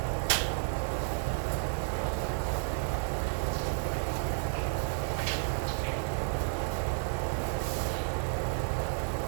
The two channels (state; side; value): silent; left; digital silence